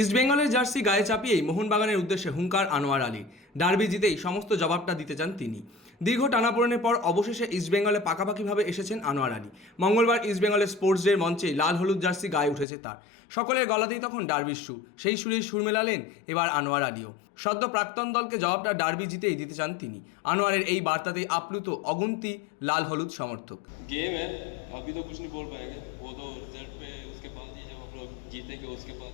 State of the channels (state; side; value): drops out; right; at 12.7 s